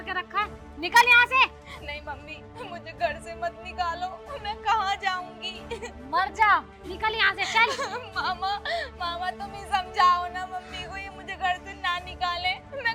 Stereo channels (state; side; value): identical; both; correlation 1.00